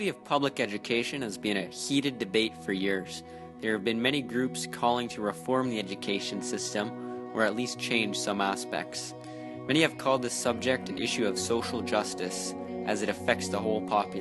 of public education has been a heated debate for years. There have been many groups calling to reform the education system or at least change some aspects. Many have called this subject an issue of social justice as it affects the whole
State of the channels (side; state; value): both; identical; correlation 1.00